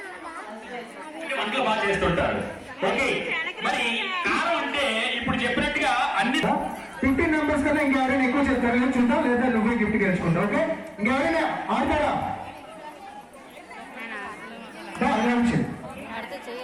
వంటలు బాగా చేస్తుంటారు. ఓకే, మరి కారం అంటే ఇప్పుడు చెప్పినట్టుగా అన్ని 15 మెంబర్స్ కన్నా ఇంకెవరైనా ఎక్కువ చెప్తారు నేను చూద్దాం, లేదా నువ్వే గిఫ్ట్ గెలుచుకుంటావు. ఓకే, ఇంకెవరైనా ఆడతారా?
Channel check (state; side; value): identical; both; correlation 1.00